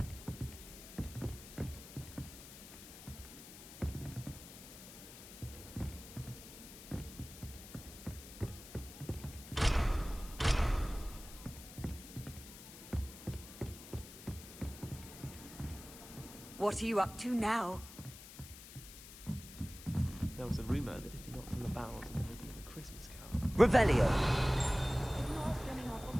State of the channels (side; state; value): left; noise; hiss, 15 dB below the sound